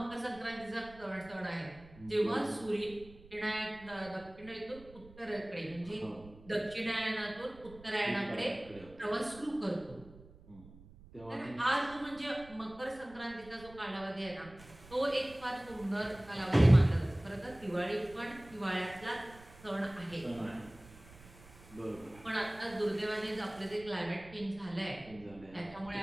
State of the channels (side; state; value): right; noise; rumble, 20 dB below the sound